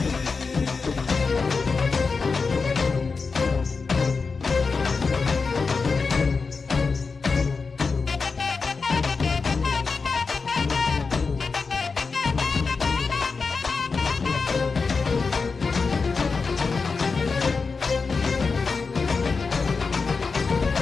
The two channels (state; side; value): quieter; right; 4.6 dB